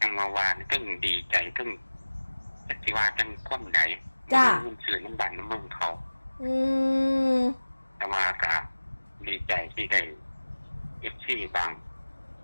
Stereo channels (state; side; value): inverted; both; correlation -1.00